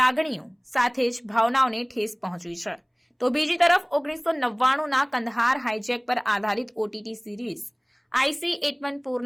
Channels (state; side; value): identical; both; correlation 1.00